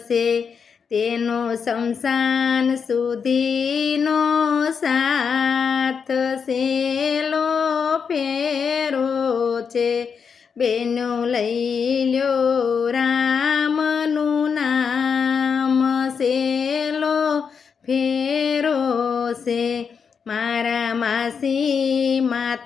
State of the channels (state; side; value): quieter; right; 6.3 dB